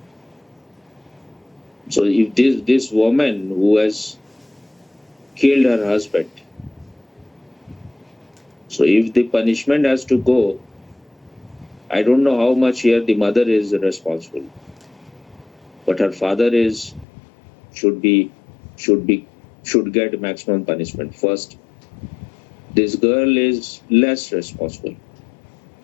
So if this woman who has killed her husband, so if the punishment has to go, I don't know how much here the mother is responsible, but her father should be should be should get maximum punishment. First, this girl is less responsible.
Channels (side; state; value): right; drops out; at 17.1 s